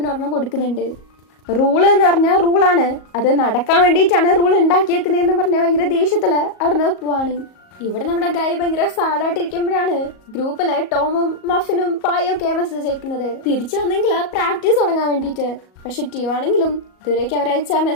ഒരെണ്ണം കൊടുക്കുന്നുണ്ട്. റൂള് എന്ന് പറഞ്ഞാൽ റൂളാണ്, അത് നടക്കാൻ വേണ്ടിയിട്ടാണ് റൂൾ ഉണ്ടാക്കിയേക്കുന്നതെന്ന് പറഞ്ഞാൽ ഭയങ്കര ദേഷ്യത്തില് അവിടുന്ന് പോവാണ്. ഇവിടെ നമ്മുടെ ഗായ് ഭയങ്കര സാഡായിട്ടിരിക്കുമ്പോഴാണ് ഗ്രൂപ്പില് ടോമും മഫിനും പായും ഒക്കെ മെസ്സേജ് അയക്കുന്നത് തിരിച്ചു വന്നെങ്കിൽ പ്രാക്ടീസ് തുടങ്ങാൻ വേണ്ടിയിട്ട്. പക്ഷെ ട്യൂ ആണെങ്കിലും ഇതുവരേക്ക് അവരയച്ച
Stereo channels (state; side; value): late; right; 38 ms